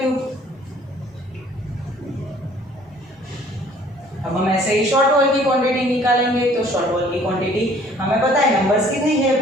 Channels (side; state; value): both; normal; correlation 0.56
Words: क्यूब। अब हम ऐसे ही शॉर्ट वॉल की क्वांटिटी निकालेंगे। तो शॉर्ट वॉल की क्वांटिटी हमें पता है नंबर्स कितनी है?